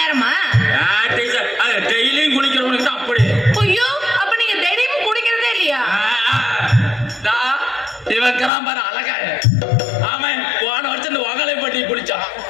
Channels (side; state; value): right; drops out; at 8.5 s